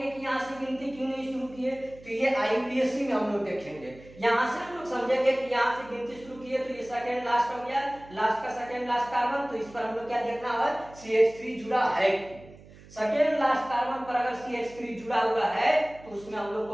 कि यहाँ से गिनती क्यों नहीं शुरू किए, तो ये IUPAC में हम लोग देखेंगे, यहाँ से हम लोग समझेंगे कि यहाँ से गिनती शुरू किए तो ये सेकेंड लास्ट हो गया, लास्ट का सेकेंड लास्ट कार्बन, तो इस पर हम लोग क्या देखना है, CH3 जुड़ा है। सेकेंड लास्ट कार्बन पर अगर CH3 जुड़ा हुआ है तो उसमें हम लोग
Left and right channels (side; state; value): right; noise; hum, 21 dB below the sound